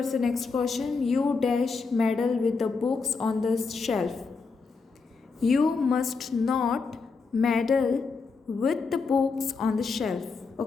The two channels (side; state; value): right; quieter; 4.6 dB